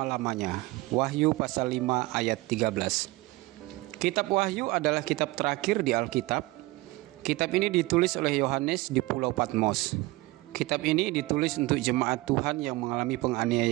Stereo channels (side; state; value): left; quieter; 21.0 dB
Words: Wahyu pasal 5 ayat 13. Kitab Wahyu adalah kitab terakhir di Alkitab. Kitab ini ditulis oleh Yohanes di Pulau Patmos. Kitab ini ditulis untuk jemaat Tuhan yang mengalami